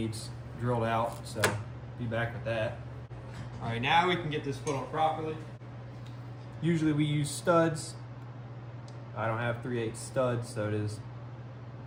drilled out, so be back with that. All right, now we can get this put on properly. Usually we use studs. I don't have 3/8 studs, so it is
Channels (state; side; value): identical; both; correlation 1.00